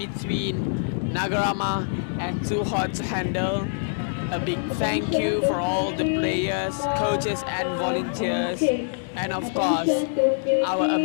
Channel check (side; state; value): right; silent; digital silence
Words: NAGA RAMAH and too hard to handle. A big thank you for all the players, coaches and volunteers, and of course our